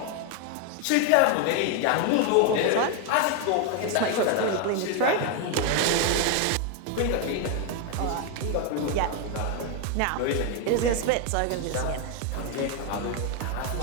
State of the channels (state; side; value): different; both; correlation 0.01